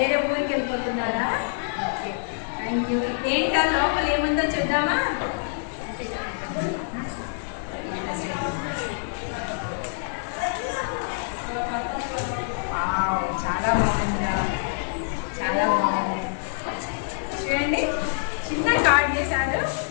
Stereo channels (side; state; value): right; silent; 61 dB below the other